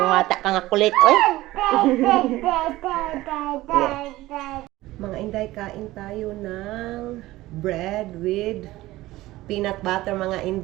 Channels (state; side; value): quieter; left; 17.4 dB